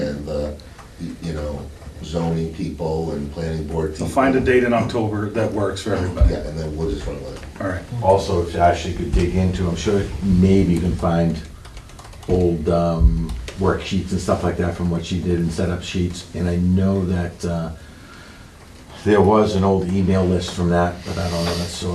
the, you know, zoning people and planning board So people. find a date in October that works for everybody. Yeah, and then we'll just run with it. All right. Also, if Ashley could dig into, I'm sure maybe you can find old worksheets and stuff like that from what she did and set up sheets. And I know that there was an old email list from that, but I don't know, that's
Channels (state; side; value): identical; both; correlation 1.00